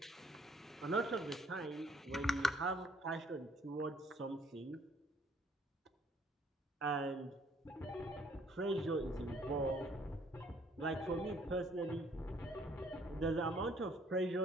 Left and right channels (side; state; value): both; normal; correlation 0.62